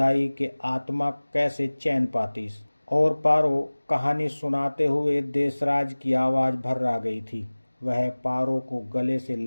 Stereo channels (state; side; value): inverted; both; correlation -1.00